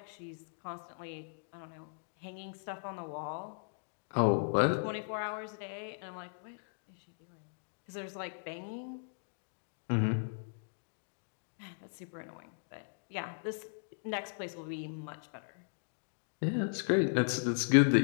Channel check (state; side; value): silent; right; digital silence